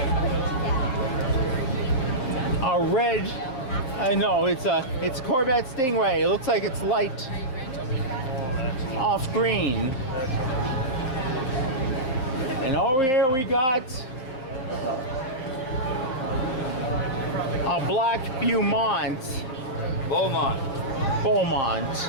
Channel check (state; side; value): late; right; 7.5 ms